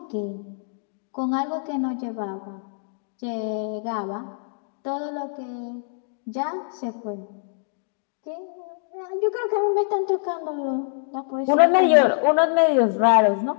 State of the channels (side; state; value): right; silent; digital silence